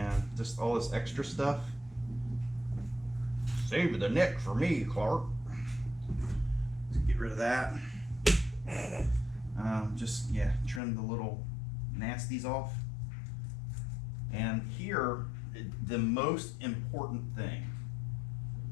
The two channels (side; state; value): right; drops out; at 10.8 s